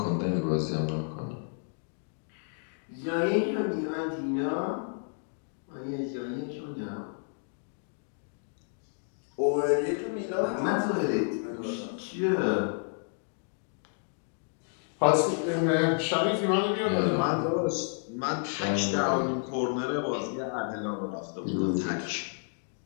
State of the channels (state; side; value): silent; right; 57 dB below the other